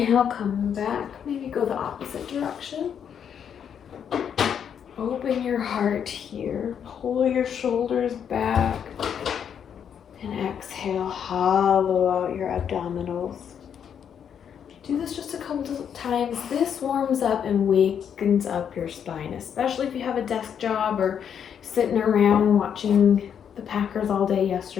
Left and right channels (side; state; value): right; quieter; 8.2 dB